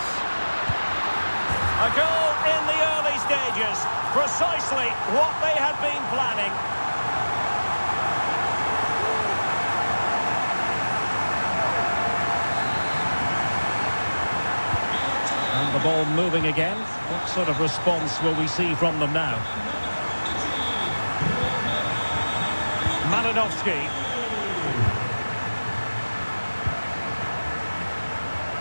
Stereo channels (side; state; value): both; inverted; correlation -1.00